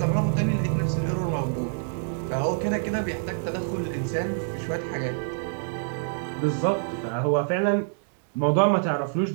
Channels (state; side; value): silent; left; 61 dB below the other